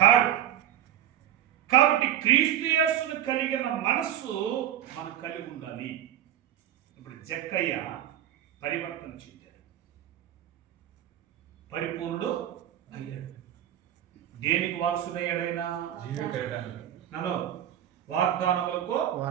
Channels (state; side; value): quieter; left; 11.3 dB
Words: కాడు. కాబట్టి క్రీస్తు యేసును కలిగిన మనస్సు మనం కలిగి ఉండాలి. ఇప్పుడు జక్కయ్య పరివర్తన చెందాడు, పరిపూర్ణుడు అయ్యాడు. దేనికి వారసుడయ్యాడైనా? నన్ను వాగ్దానములకు